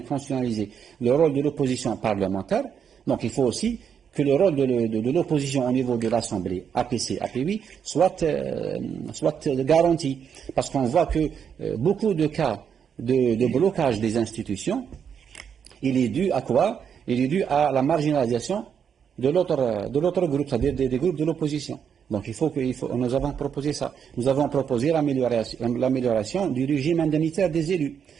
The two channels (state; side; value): quieter; left; 7.5 dB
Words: constitutionnalisé le rôle de l'opposition parlementaire. Donc il faut aussi que le rôle de l'opposition au niveau de l'Assemblée, APC, APUI, soit garanti. Parce qu'on voit que beaucoup de cas de blocage des institutions, il est dû à quoi? Il est dû à la marginalisation de l'autre groupe, c'est-à-dire des groupes de l'opposition. Donc nous avons proposé ça. Nous avons proposé l'amélioration du régime indemnitaire des élus.